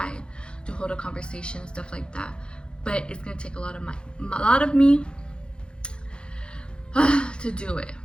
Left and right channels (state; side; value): late; right; 0.052 ms